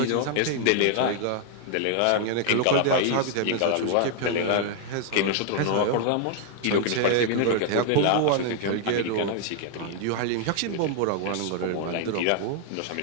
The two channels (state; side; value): different; both; correlation 0.00